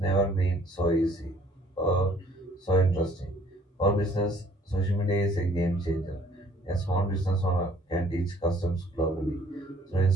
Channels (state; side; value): normal; both; correlation 0.59